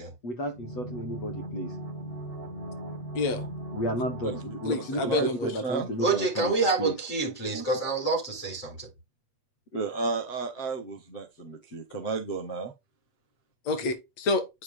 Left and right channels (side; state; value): right; late; 8.2 ms